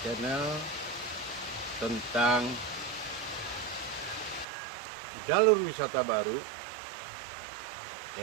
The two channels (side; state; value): left; drops out; at 4.5 s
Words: tentang jalur wisata baru,